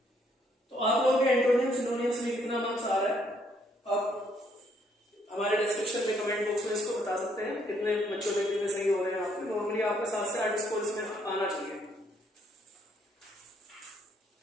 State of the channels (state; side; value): normal; both; correlation 0.69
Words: तो आप लोग के एंटोनिम्स सिनोनिम्स में कितना मार्क्स आ रहा है आप हमारे डिस्क्रिप्शन में कमेंट बॉक्स में इसको बता सकते हैं, कितने बच्चों में कितने सही हो रहे हैं आपके। नॉर्मली आपका 7 से 8 स्कोर इसमें आना चाहिए।